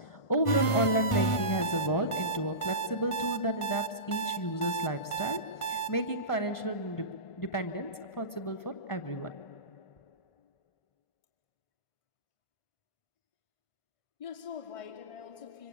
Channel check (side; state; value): right; late; 1.5 ms